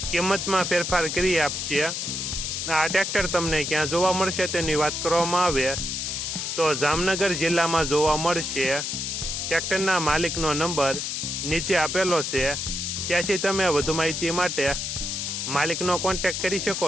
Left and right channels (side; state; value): left; noise; hiss, 3 dB below the sound